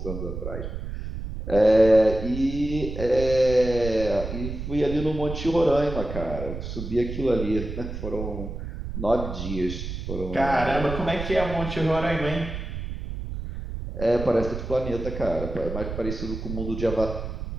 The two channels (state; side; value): noise; right; rumble, 7 dB below the sound